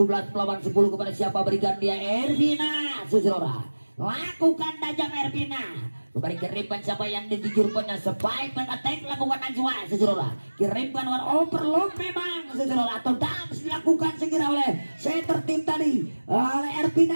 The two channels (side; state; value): both; inverted; correlation -1.00